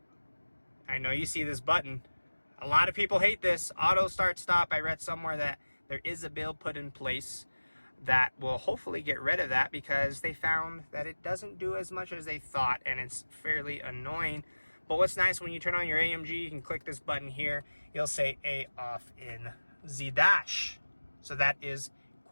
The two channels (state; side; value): inverted; both; correlation -1.00